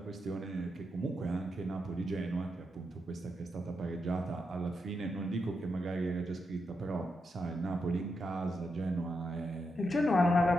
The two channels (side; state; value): both; normal; correlation 0.84